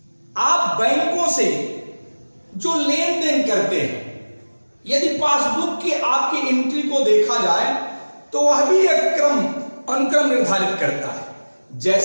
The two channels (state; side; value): inverted; both; correlation -1.00